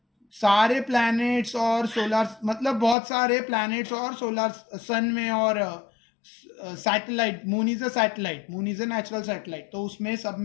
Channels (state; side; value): drops out; right; at 3.0 s